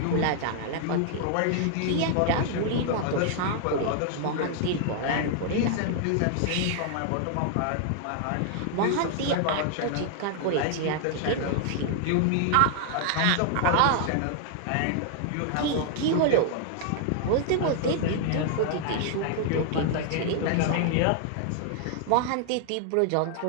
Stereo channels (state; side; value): different; both; correlation 0.00